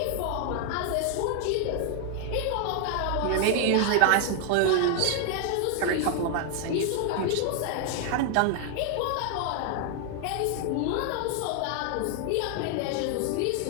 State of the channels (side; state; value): both; different; correlation 0.00